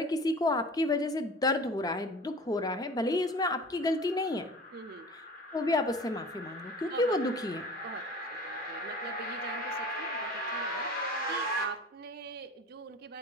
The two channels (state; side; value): normal; both; correlation 0.40